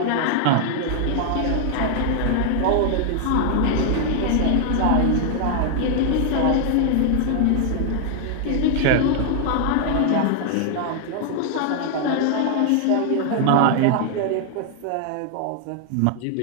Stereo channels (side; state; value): both; different; correlation 0.00